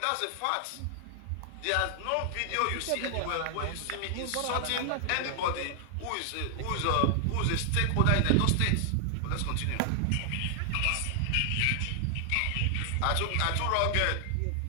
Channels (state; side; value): different; both; correlation 0.00